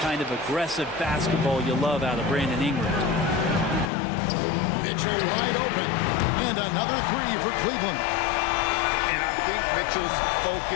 kind of aggressive basketball you love out of Brandon Ingram. Mitchell wide open. And another 3 for Cleveland. I think Mitchell's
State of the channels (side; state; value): right; drops out; at 3.9 s